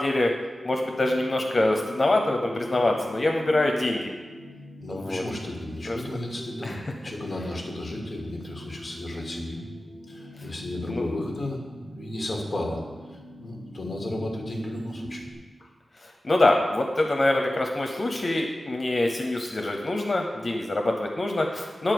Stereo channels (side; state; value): both; normal; correlation 0.95